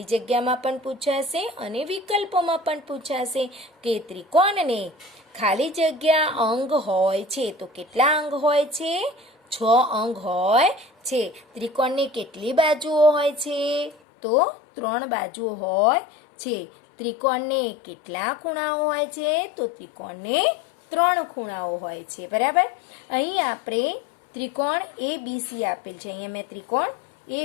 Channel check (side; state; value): right; drops out; at 14.0 s